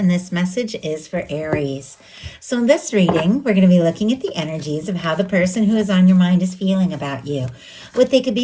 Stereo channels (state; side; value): identical; both; correlation 1.00